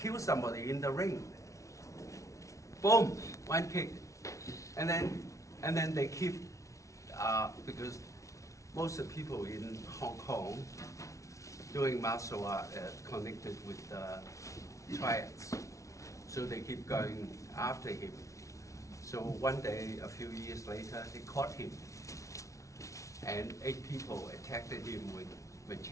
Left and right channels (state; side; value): late; right; 0.15 ms